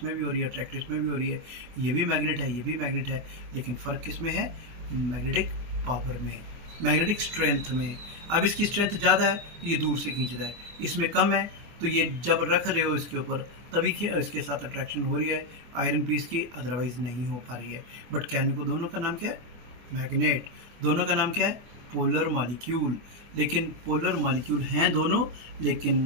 भी हो रही है, अट्रैक्ट इसमें भी हो रही है। ये भी मैग्नेट है, ये भी मैग्नेट है, लेकिन फ़र्क किस में है? मैग्नेटिक पावर में, मैग्नेटिक स्ट्रेंथ में। अब इसकी स्ट्रेंथ ज़्यादा है तो ये दूर से खींच रहा है, इसमें कम है तो ये जब रख रहे हो इसके ऊपर तभी इसके साथ अट्रैक्शन हो रही है आयरन पीस की, अदरवाइज नहीं हो पा रही है। बट कहने को दोनों का नाम क्या है? मैग्नेट। दोनों का नाम क्या है? Polar molecule. लेकिन पोलर मॉलिक्यूल हैं दोनों, लेकिन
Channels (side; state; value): left; late; 24 ms